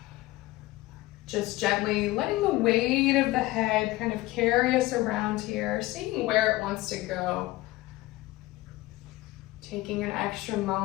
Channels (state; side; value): quieter; right; 18.5 dB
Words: Just gently letting the weight of the head kind of carry us around here, seeing where it wants to go. Taking an extra